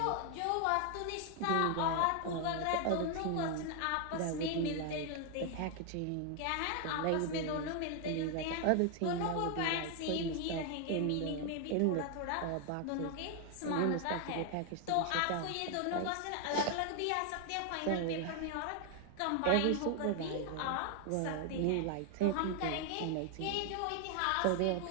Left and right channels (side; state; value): both; different; correlation 0.00